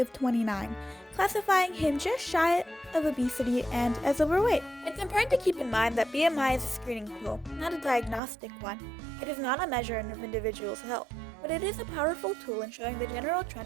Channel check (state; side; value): drops out; left; at 8.2 s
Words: of 29, classifying him just shy of obesity and as overweight. It's important to keep in mind that BMI is a screening tool, not a diagnostic one. It is not a measure of individuals' health, but it is a powerful tool in showing the general